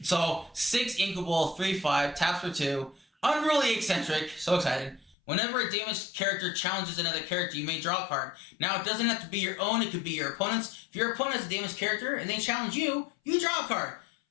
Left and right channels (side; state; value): right; drops out; at 5.2 s